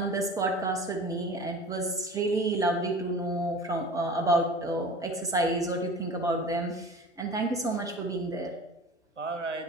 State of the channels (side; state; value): both; normal; correlation 0.39